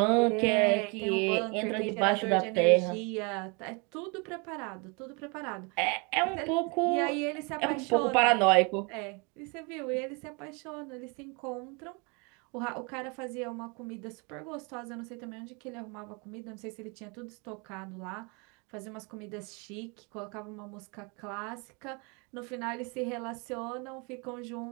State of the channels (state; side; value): quieter; left; 31.7 dB